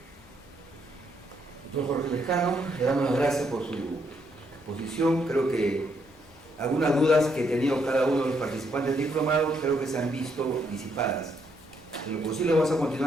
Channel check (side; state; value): both; normal; correlation 0.74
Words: Doctor Jorge Lescano, le damos las gracias por su exposición. Creo que algunas dudas que ha tenido cada uno de los participantes del diplomado creo que se han visto disipadas. En lo posible vamos a